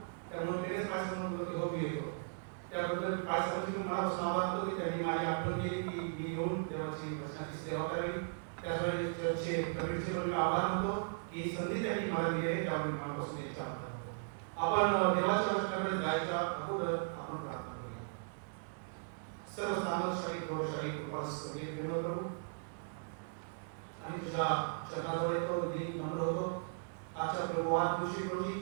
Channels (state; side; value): silent; left; digital silence